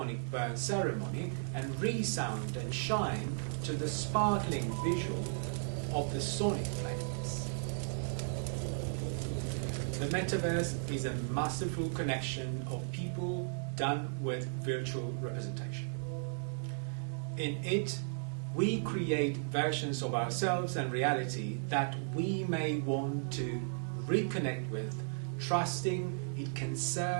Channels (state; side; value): silent; left; digital silence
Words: burn ceremony and resound and shine to the sparkling visual of the sonic flames. The Metaverse is a masterful connection of people done with virtual representation. In it, we create versions of ourselves and reality that we may want to reconnect with, trusting it can